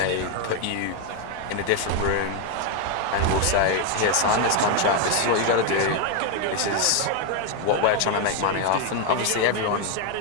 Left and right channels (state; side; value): different; both; correlation 0.01